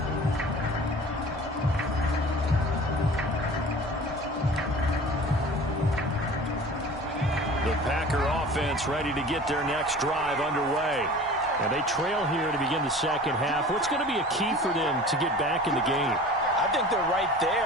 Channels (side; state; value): both; normal; correlation 0.41